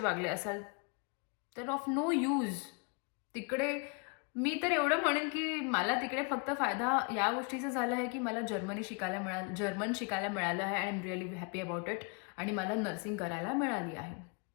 असाल, तर ऑफ नो यूज. तिकडे मी तर एवढं म्हणेन की मला तिकडे फक्त फायदा या गोष्टीचा झाला आहे की मला जर्मन शिकायला मिळालं आहे. I am really happy about it. आणि मला नर्सिंग करायला मिळाली आहे.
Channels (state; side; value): quieter; right; 33.7 dB